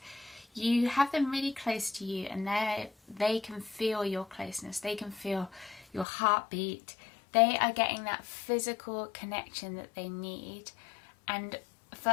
you have them really close to you and they can feel your closeness, they can feel your heartbeat, they are getting that physical connection that they need. And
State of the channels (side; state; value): right; drops out; at 6.1 s